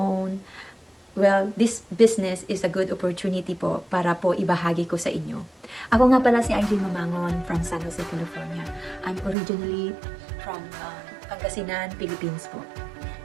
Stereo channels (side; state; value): left; drops out; at 9.3 s